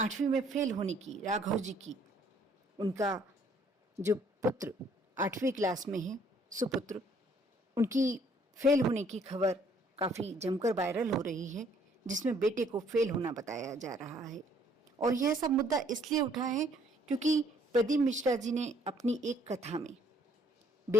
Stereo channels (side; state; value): both; normal; correlation 0.63